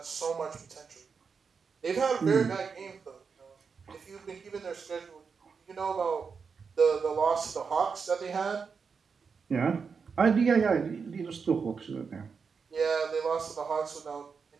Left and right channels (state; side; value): quieter; left; 5.6 dB